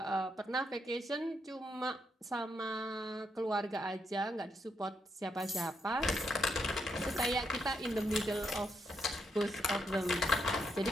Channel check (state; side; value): normal; both; correlation 0.80